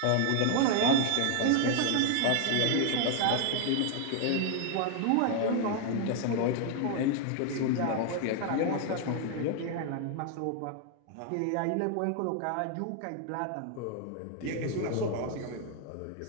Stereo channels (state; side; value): different; both; correlation 0.00